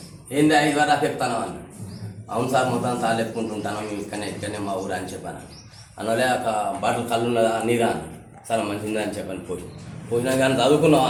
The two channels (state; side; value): identical; both; correlation 1.00